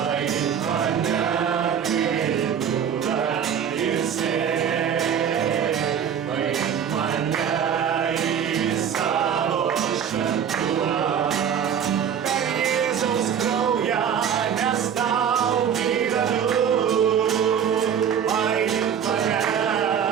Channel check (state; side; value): quieter; left; 8.2 dB